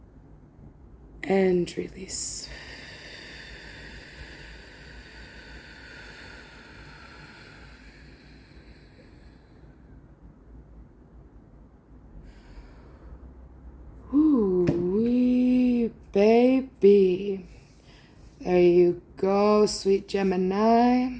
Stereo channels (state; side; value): identical; both; correlation 1.00